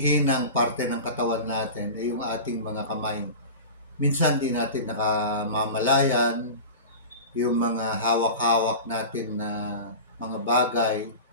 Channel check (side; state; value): both; inverted; correlation -0.32